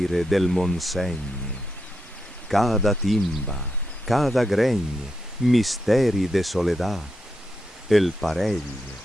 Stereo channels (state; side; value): normal; both; correlation 0.84